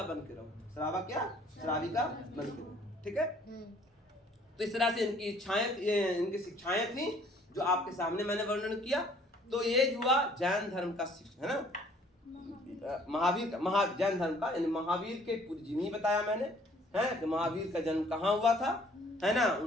बन के रहो, श्रावक या श्राविका बन के रहो, ठीक है। तो इस तरह से इनकी इच्छाएं, इनकी शिक्षाएं थी जो आपके सामने मैंने वर्णन किया। तो ये हुआ जैन धर्म का शिक्षा, है ना। महावीर का, जैन धर्म का, यानी महावीर के पूरी जीवनी बताया मैंने, है कि महावीर का जन्म कहाँ हुआ था, है ना,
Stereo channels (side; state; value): both; normal; correlation 0.58